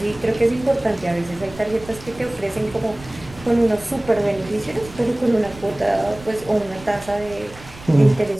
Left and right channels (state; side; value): noise; right; rumble, 18 dB below the sound